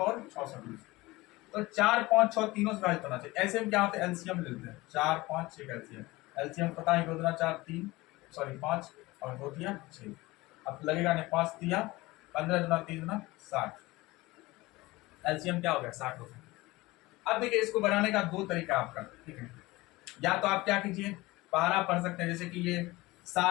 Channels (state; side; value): quieter; right; 20.5 dB